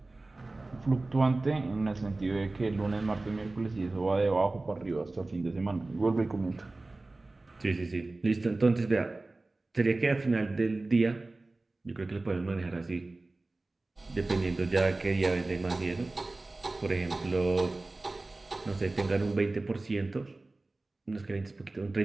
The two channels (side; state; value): left; quieter; 3.1 dB